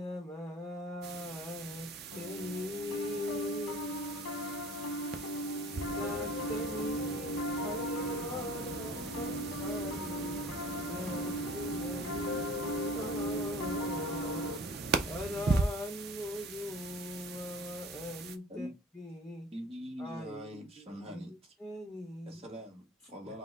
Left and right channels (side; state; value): both; normal; correlation 0.45